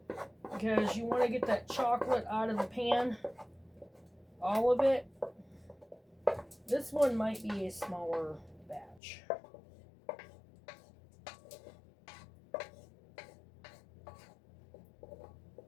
Because you want to get that chocolate out of the pan. All of it. This one might be a smaller batch.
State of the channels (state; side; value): drops out; right; at 9.0 s